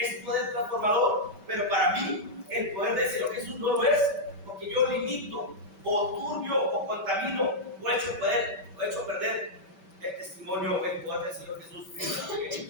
poder transformador, pero para mí el poder del Señor Jesús no lo es, porque yo limito, o turbio, o contamino, o he hecho perder el testimonio, el poder del Señor Jesús en el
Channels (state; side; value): late; left; 5.2 ms